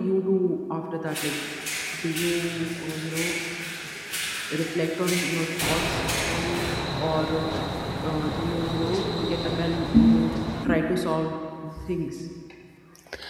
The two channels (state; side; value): identical; both; correlation 1.00